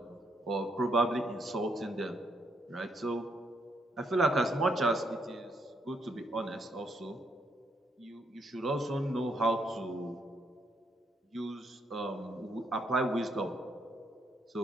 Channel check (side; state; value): both; normal; correlation 0.74